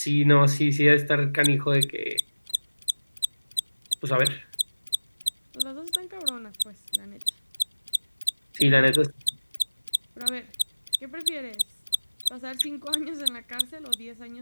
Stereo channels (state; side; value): inverted; both; correlation -1.00